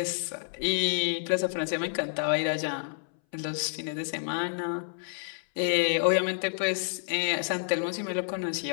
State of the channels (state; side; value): silent; right; 58 dB below the other